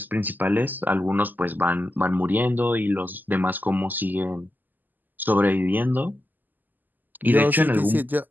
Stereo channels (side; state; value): left; late; 0.086 ms